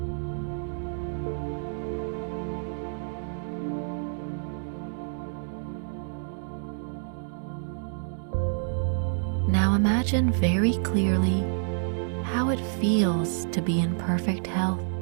Now imagine very clearly how it feels to be in perfect health.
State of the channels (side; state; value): left; silent; 59 dB below the other